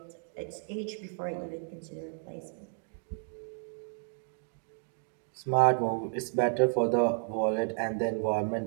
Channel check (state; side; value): silent; left; 56 dB below the other